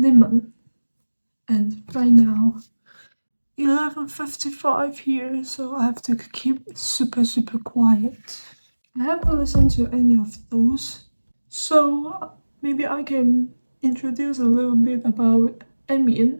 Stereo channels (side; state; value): both; inverted; correlation -1.00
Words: And right now 11:55 here, so I have to keep super quiet. I haven't listened to any of those, so maybe I can introduce a little bit about Emian.